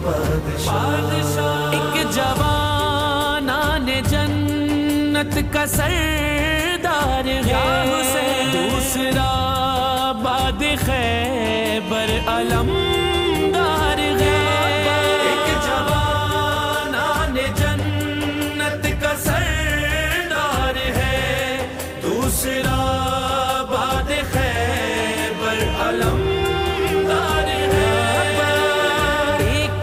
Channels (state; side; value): identical; both; correlation 1.00